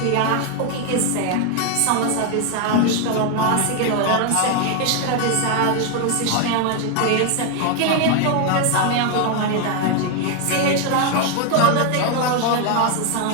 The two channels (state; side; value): different; both; correlation 0.01